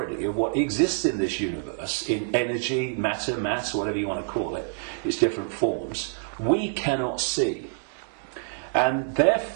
of what exists in this universe, in energy, matter, mass, whatever you want to call it, its different forms, we cannot see. And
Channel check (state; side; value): silent; left; digital silence